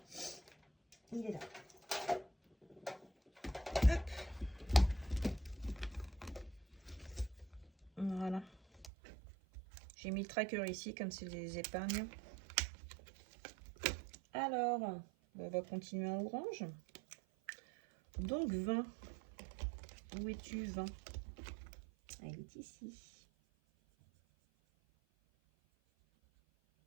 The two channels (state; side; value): drops out; left; at 8.9 s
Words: Il est là. Hop. Voilà. J'ai mis le tracker ici, comme c'est les épargnes. Alors, on va continuer en orange. Donc 20. Où es-tu, 20? Elle est ici.